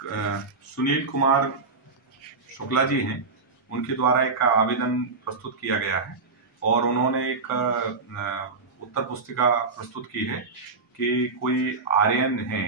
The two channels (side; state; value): left; quieter; 4.2 dB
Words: सुनील कुमार शुक्ला जी हैं, उनके द्वारा एक आवेदन प्रस्तुत किया गया है और उन्होंने एक उत्तर पुस्तिका प्रस्तुत की है कि कोई आर्यन